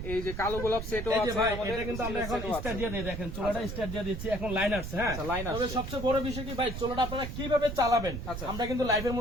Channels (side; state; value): right; noise; rumble, 7 dB below the sound